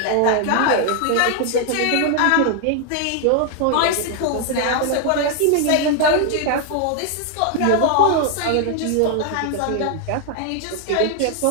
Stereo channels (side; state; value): both; different; correlation 0.00